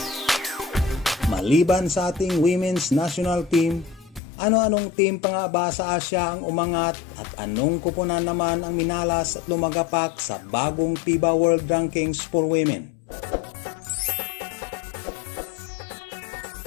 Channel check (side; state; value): right; drops out; at 4.2 s